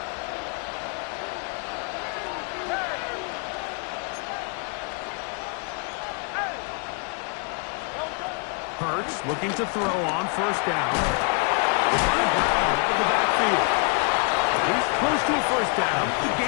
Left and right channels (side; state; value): right; quieter; 38.1 dB